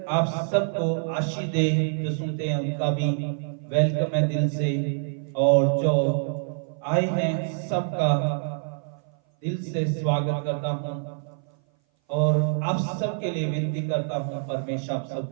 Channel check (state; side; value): silent; left; 58 dB below the other